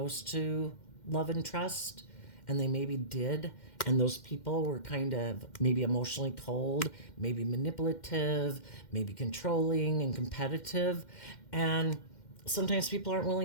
to love and trust, and they maybe did, and those people were kind of maybe emotionally cold, maybe manipulative, maybe controlling and competitive. And sometimes people aren't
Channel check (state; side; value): late; right; 2.1 ms